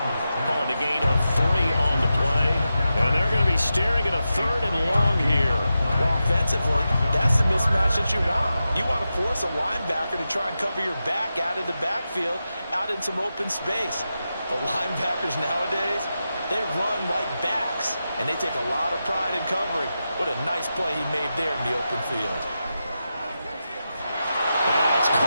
Calling a gain of 3 on the play. And they're going to be staring at a 3rd and long here. Well, offensively, that's the mismatch that you want. You want to force a linebacker to try and cover your back out of the backfield, out in some open space. The linebackers nowadays, they run like backs, and they take a lot of pride in covering. What a nice play he made there in the open field. That's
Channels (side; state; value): both; inverted; correlation -0.90